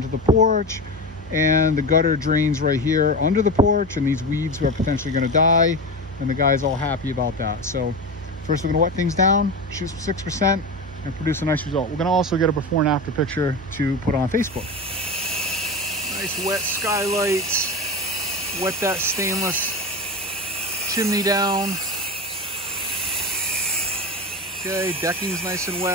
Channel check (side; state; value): both; normal; correlation 0.23